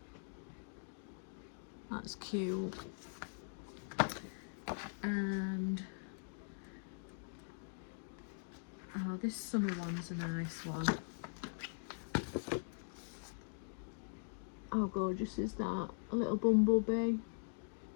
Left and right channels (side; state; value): right; silent; digital silence